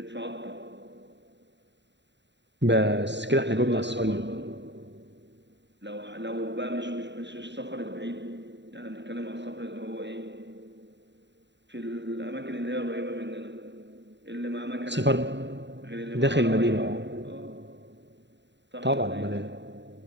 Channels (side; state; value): left; late; 0.52 ms